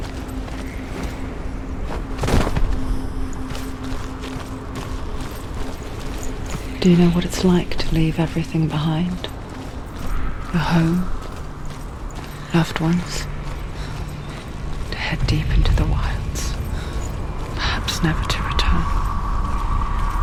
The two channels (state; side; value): identical; both; correlation 1.00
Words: Do you know what it's like to leave everything behind? Your home, loved ones, to head deep into the wilds. vows never to return.